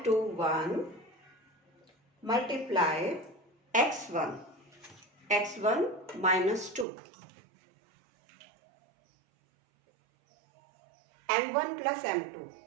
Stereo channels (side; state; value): left; drops out; at 6.9 s